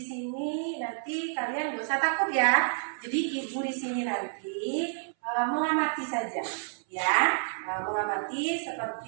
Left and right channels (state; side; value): silent; left; 58 dB below the other